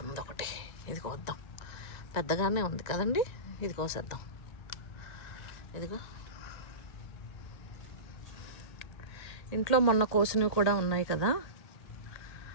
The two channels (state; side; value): late; right; 1.9 ms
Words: ఉంది ఒకటి. ఇది కోద్దాం. పెద్దగానే ఉంది కదండి, ఇది కోసేద్దాం. ఇదిగో ఇంట్లో మొన్న కోసినవి కూడా ఉన్నాయి కదా,